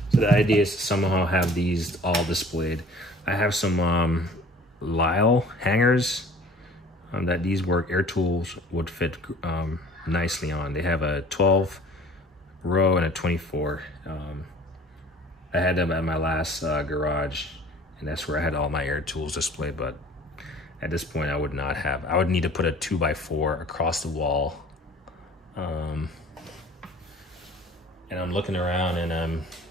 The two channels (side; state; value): both; normal; correlation 0.48